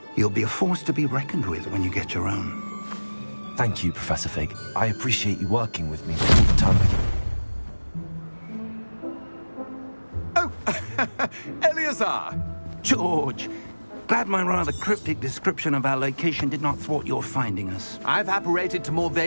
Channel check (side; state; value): both; inverted; correlation -1.00